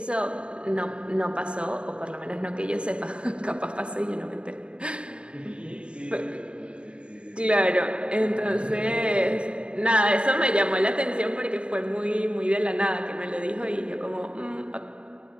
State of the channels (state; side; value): late; left; 0.056 ms